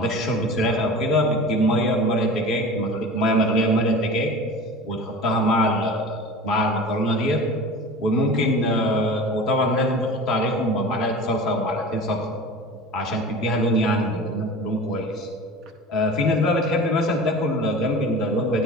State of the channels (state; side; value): normal; both; correlation 0.36